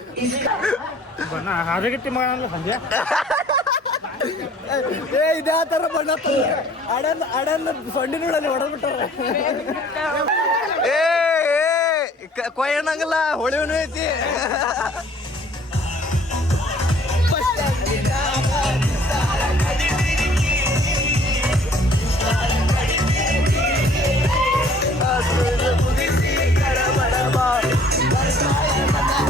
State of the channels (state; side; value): normal; both; correlation 0.55